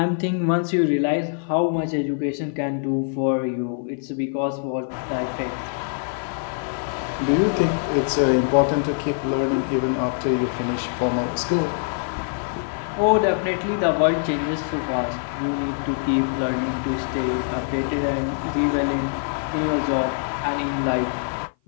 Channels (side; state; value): right; silent; 56 dB below the other